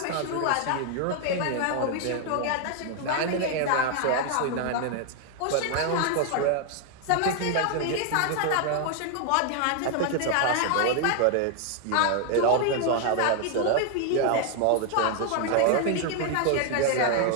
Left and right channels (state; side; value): different; both; correlation 0.00